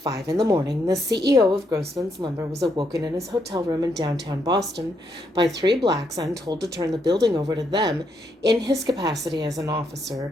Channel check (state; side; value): normal; both; correlation 0.77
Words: a.m, the CEO of Grossman's Lumber was awoken in his hotel room in downtown Boston by 3 blacks and told to turn the building over to them in his capacity as an